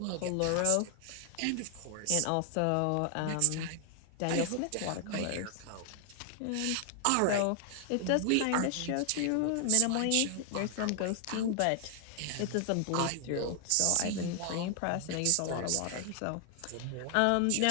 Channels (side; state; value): both; different; correlation 0.00